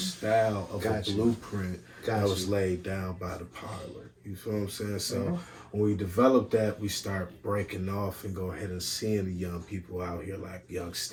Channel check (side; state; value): both; identical; correlation 1.00